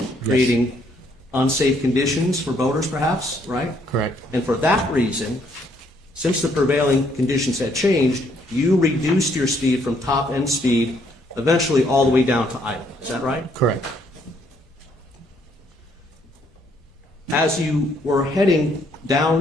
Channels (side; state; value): both; normal; correlation 0.69